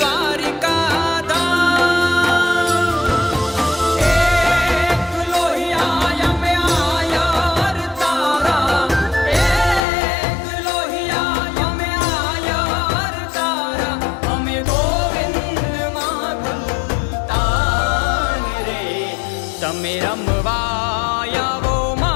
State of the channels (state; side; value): drops out; right; at 9.8 s